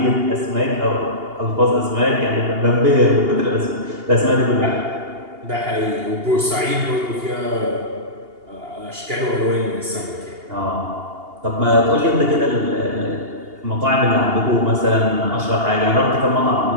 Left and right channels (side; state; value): left; late; 2.8 ms